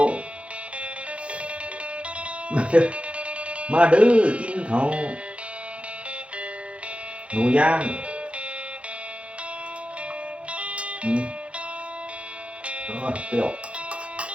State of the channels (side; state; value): left; late; 0.061 ms